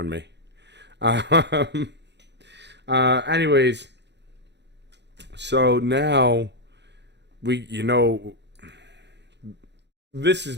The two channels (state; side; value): late; left; 0.50 ms